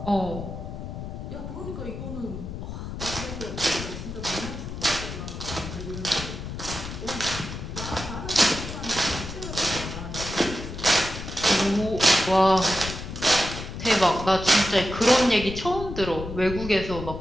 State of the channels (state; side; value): noise; left; rumble, 8 dB below the sound